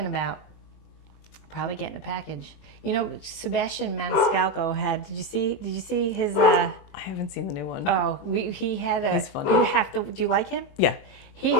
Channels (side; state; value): right; late; 21 ms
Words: about? Probably getting a package. Sebastian Maniscalco had. Did you see his? I haven't seen the new one. Oh, he had a. He's funny. You have to. Do you like him? Yeah. He